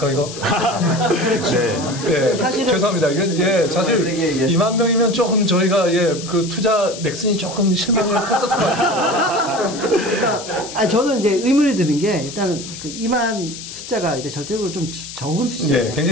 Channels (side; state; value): left; noise; hiss, 11 dB below the sound